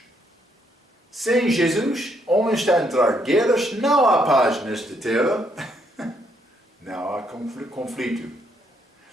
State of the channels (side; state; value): both; normal; correlation 0.73